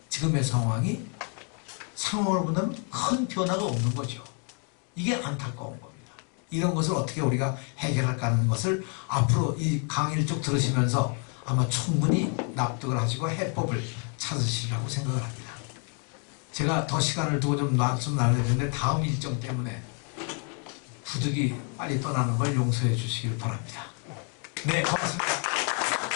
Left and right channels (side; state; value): right; quieter; 39.9 dB